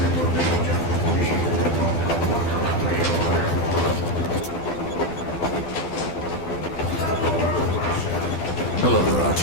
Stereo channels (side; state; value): right; late; 12 ms